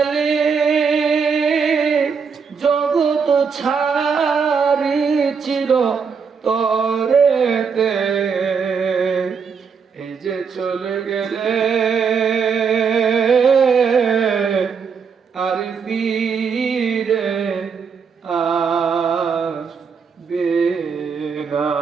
জগৎ ছাড়ি চির তরেতে, এই যে চলে গেলে আর ফিরে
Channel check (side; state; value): left; quieter; 6.0 dB